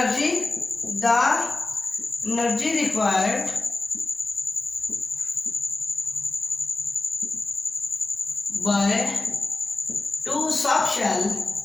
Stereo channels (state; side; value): quieter; right; 3.1 dB